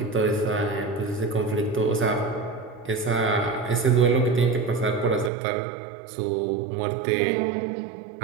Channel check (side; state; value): left; drops out; at 5.3 s